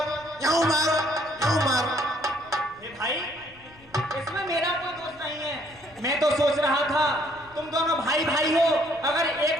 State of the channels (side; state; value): left; noise; rumble, 26 dB below the sound